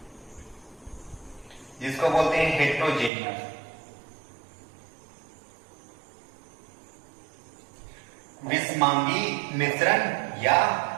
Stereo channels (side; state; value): left; drops out; at 3.1 s